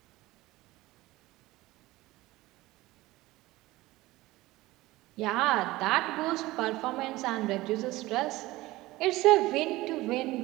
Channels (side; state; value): left; quieter; 18.8 dB